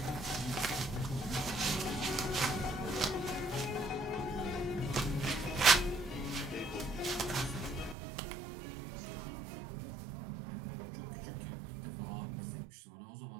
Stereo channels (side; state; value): left; drops out; at 8.0 s